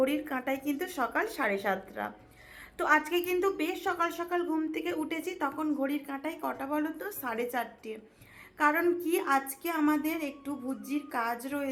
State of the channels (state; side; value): identical; both; correlation 1.00